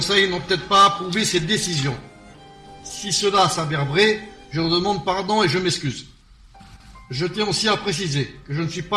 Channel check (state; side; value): identical; both; correlation 1.00